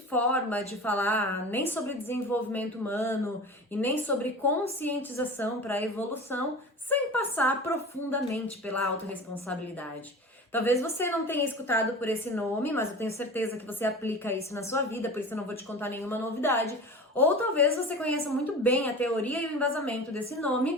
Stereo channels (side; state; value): both; normal; correlation 0.34